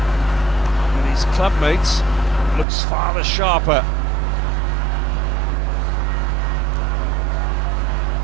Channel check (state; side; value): drops out; left; at 2.7 s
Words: his clubmate looks far the sharper.